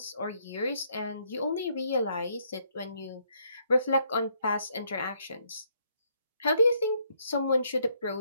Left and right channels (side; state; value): both; inverted; correlation -0.72